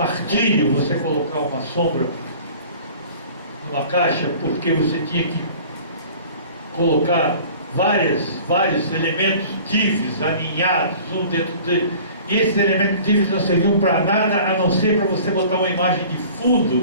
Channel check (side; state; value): both; inverted; correlation -0.46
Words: você colocar uma sombra numa caixa, porque você tinha que colocar vários elementos divs alinhados um dentro dele, e esses elementos divs não serviam para nada a não ser para você botar uma imagem de